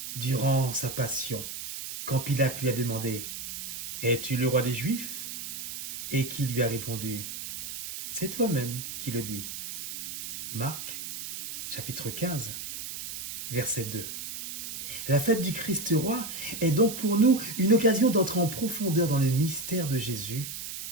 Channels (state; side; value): noise; right; hiss, 8 dB below the sound